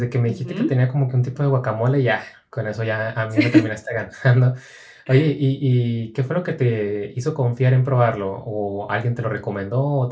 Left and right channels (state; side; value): identical; both; correlation 1.00